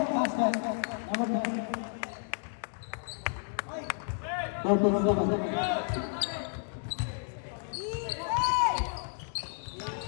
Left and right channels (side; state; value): right; silent; 57 dB below the other